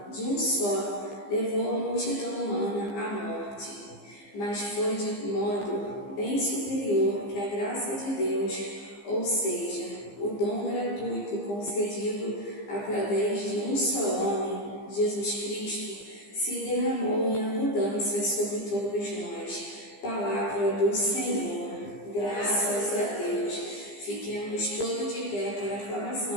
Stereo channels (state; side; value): late; right; 15 ms